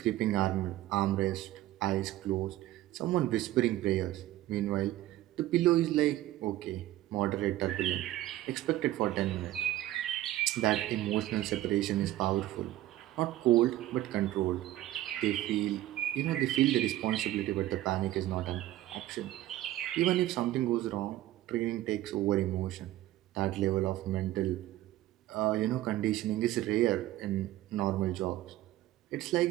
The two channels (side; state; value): left; quieter; 15.0 dB